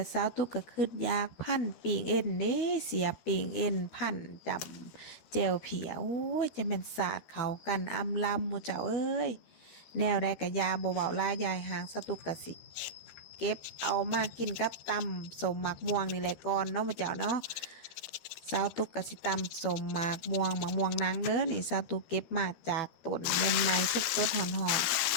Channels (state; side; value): late; right; 13 ms